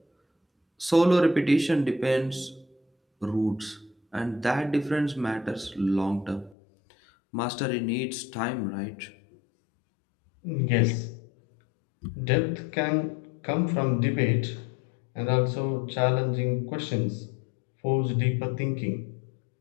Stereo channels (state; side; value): drops out; right; at 6.6 s